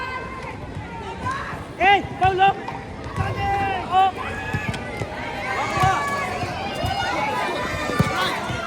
Hey, Paulo! Oh!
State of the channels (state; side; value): identical; both; correlation 1.00